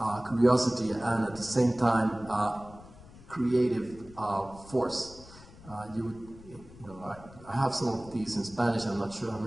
curiosity and at the same time creative force. I have some of these in Spanish. I'm not sure how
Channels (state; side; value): noise; left; rumble, 20 dB below the sound